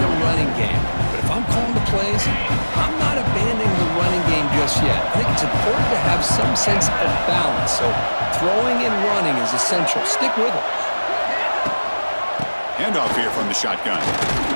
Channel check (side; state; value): both; inverted; correlation -1.00